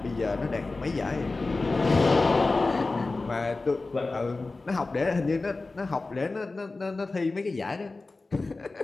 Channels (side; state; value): right; quieter; 3.5 dB